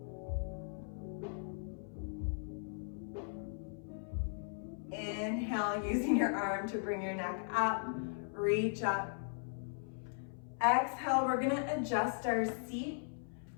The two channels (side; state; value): right; silent; 52 dB below the other